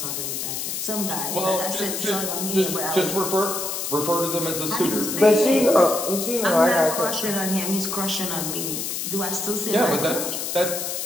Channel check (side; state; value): left; noise; hiss, 3 dB below the sound